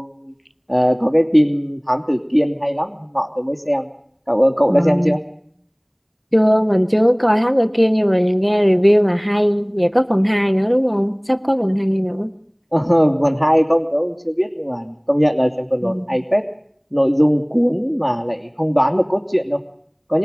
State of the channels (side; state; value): both; identical; correlation 1.00